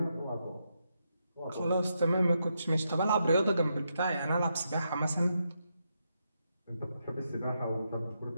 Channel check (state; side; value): inverted; both; correlation -0.82